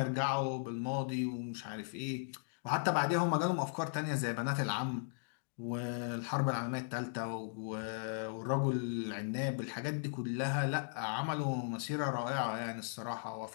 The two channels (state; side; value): silent; right; digital silence